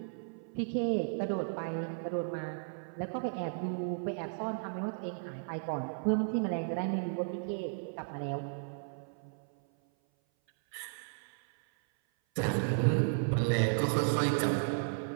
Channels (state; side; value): silent; left; 55 dB below the other